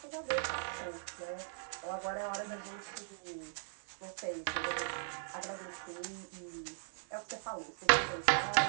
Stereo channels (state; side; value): silent; left; digital silence